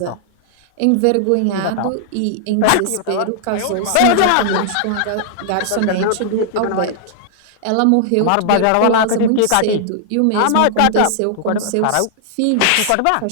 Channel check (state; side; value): different; both; correlation -0.01